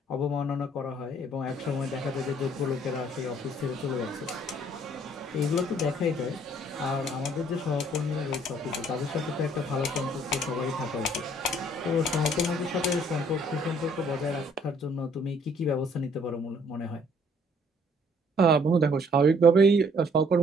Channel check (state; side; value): normal; both; correlation 0.61